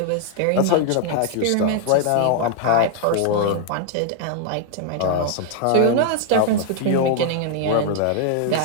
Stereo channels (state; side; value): different; both; correlation 0.00